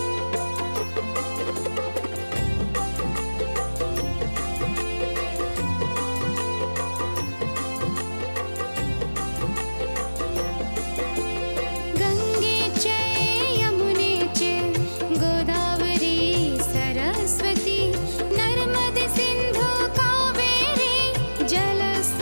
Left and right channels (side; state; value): both; inverted; correlation -1.00